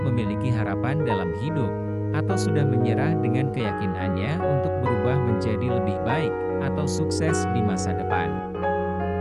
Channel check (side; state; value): both; identical; correlation 1.00